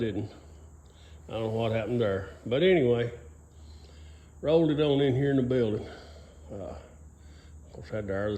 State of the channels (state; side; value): identical; both; correlation 1.00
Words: I don't know what happened there. But anyway, rolled it on in here in the building. Of course, had to air